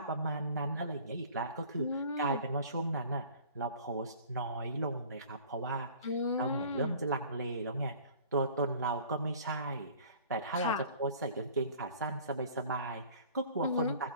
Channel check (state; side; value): inverted; both; correlation -0.48